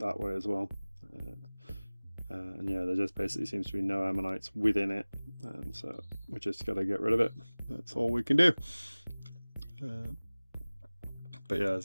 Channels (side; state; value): both; inverted; correlation -1.00